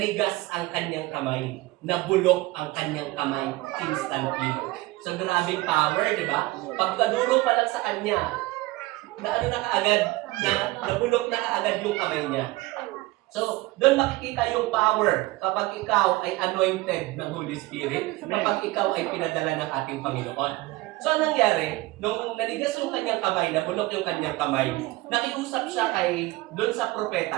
ang kanyang kamay, nabulok ang kanyang kamay instantly. So grabing power, di ba? Pagkaduro pa lang sa kanya, na kaagad, nabulok na kaagad yung kamay niya. So, doon makikita yung power kapag ikaw ay anointed ng Holy Spirit, kapag ikaw ay pinadala ng ating Panginoon. So, anong nangyari? Nung nanigas yung kanyang kamay, nabulok yung kanyang kamay, nakiusap siya doon sa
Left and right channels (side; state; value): left; quieter; 20.2 dB